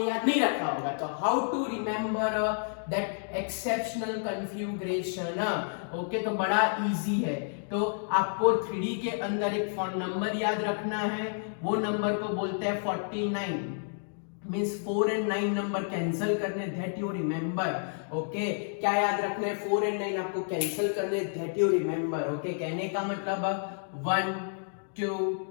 याद नहीं रखा होगा। तो how to remember that exceptional configuration. Okay तो बड़ा इजी है। तो आपको 3D के अंदर एक फोन नंबर याद रखना है, वो नंबर को बोलते हैं 49। मींस 4 and 9 नंबर कैंसिल करने, दैट यू रिमेंबर। ओके क्या याद रखना है, 4 and 9 आपको कैंसिल करने, दैट यू रिमेंबर। ओके कहने का मतलब 1 2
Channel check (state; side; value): silent; right; digital silence